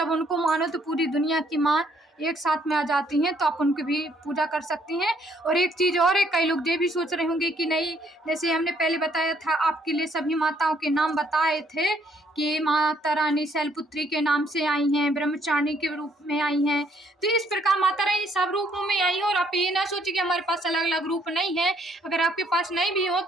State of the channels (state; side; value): normal; both; correlation 0.67